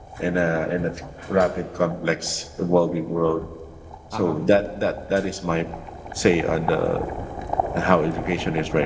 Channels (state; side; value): identical; both; correlation 1.00